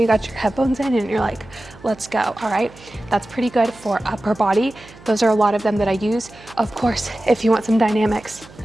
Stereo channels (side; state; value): right; noise; hum, 22 dB below the sound